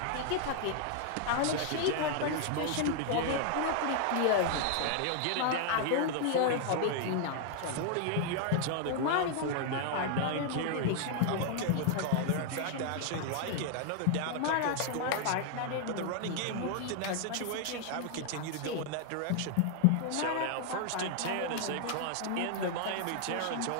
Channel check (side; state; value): both; different; correlation 0.00